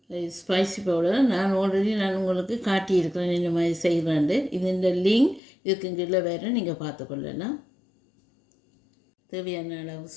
ஸ்பைசி பவுடர் நான் உங்களுக்கு காட்டியிருக்கிறேன் இந்த மாதிரி செய்கிறேன். இது இந்த லிங்க் இதுக்கு கீழே வேறு நீங்கள் பார்த்துக்கொள்ளலாம். தேவையான அளவு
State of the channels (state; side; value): drops out; right; at 5.4 s